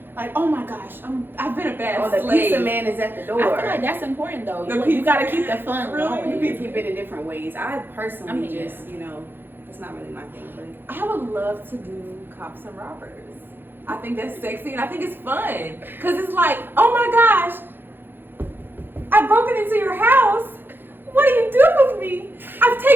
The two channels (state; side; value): late; left; 0.099 ms